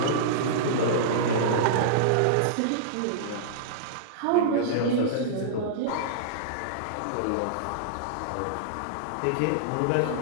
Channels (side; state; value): both; different; correlation -0.02